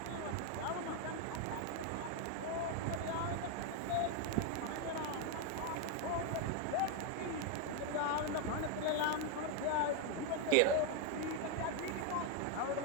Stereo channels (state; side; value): different; both; correlation 0.01